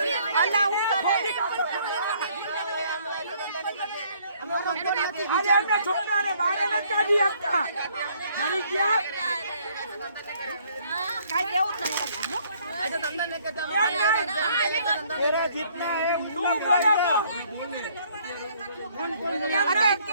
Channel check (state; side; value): inverted; both; correlation -0.63